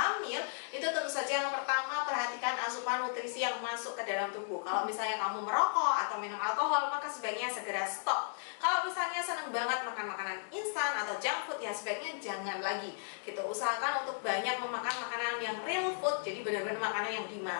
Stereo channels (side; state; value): right; silent; digital silence